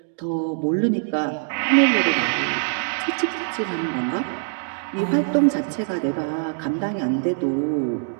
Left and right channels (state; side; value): silent; left; digital silence